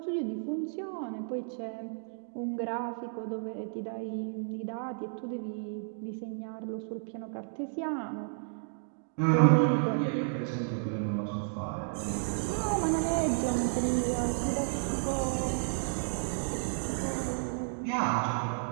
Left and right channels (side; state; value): left; silent; digital silence